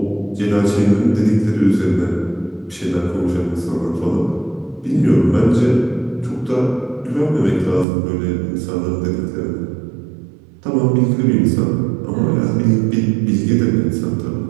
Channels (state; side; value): drops out; left; at 7.9 s